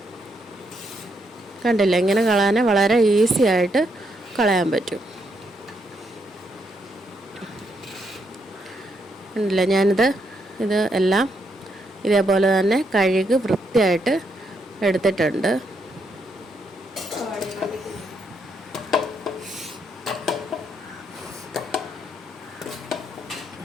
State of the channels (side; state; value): both; normal; correlation 0.77